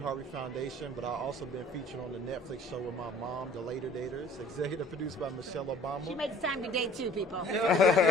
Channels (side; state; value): both; normal; correlation 0.51